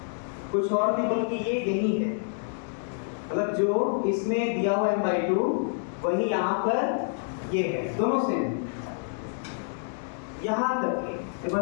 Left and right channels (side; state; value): right; silent; digital silence